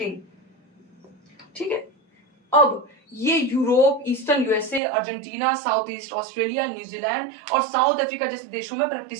ठीक है। अब ये Europe, eastern USA, Argentina, south east Australia, New Zealand और साउथ अफ्रीका जैसे देशों में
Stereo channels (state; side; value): drops out; left; at 4.8 s